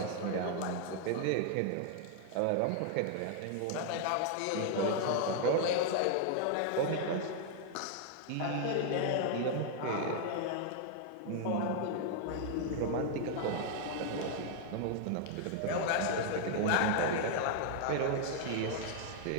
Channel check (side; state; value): both; different; correlation 0.00